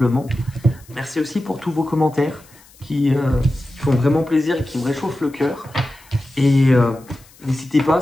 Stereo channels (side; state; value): left; noise; hiss, 26 dB below the sound